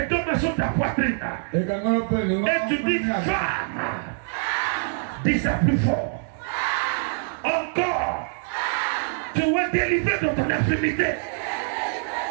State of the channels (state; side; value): silent; left; digital silence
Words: deux mains sur ta poitrine. Et tu dis femme. Dis ça plus fort. Encore. Tu es délivré de ton infirmité.